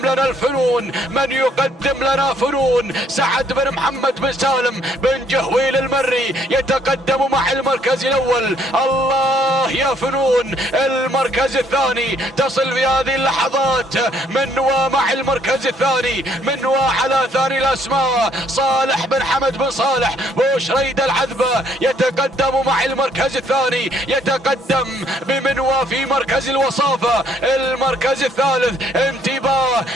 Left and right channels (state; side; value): normal; both; correlation 0.66